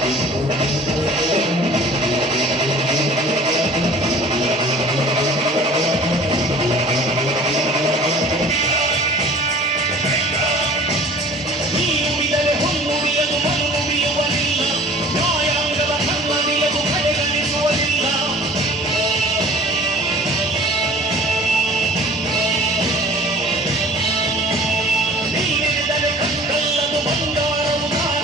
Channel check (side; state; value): both; normal; correlation 0.47